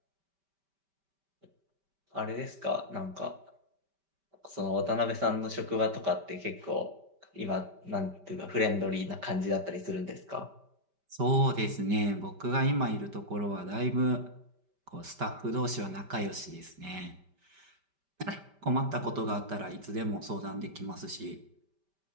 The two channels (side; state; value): left; late; 5.1 ms